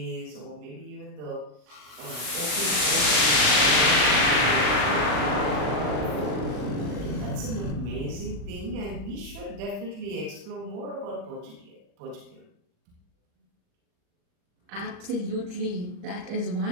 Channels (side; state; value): left; late; 40 ms